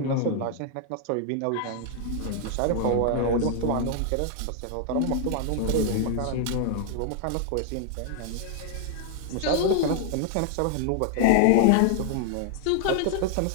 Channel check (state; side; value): different; both; correlation 0.00